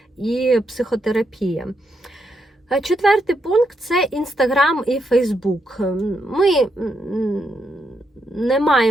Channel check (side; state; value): both; normal; correlation 0.80